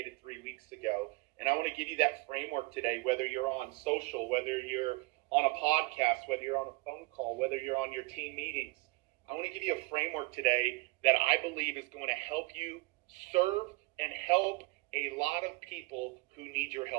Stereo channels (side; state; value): left; quieter; 25.2 dB